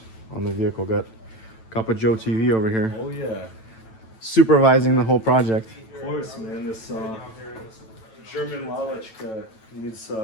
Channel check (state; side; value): late; right; 9.0 ms